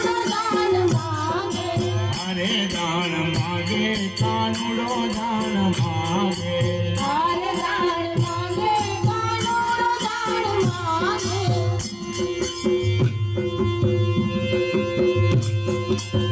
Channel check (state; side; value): identical; both; correlation 1.00